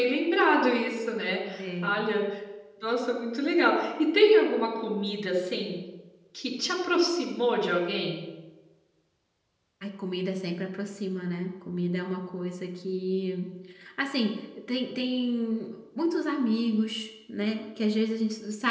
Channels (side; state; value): both; identical; correlation 1.00